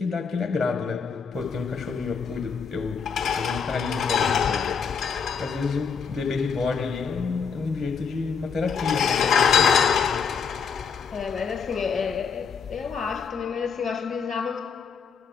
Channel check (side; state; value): right; quieter; 6.1 dB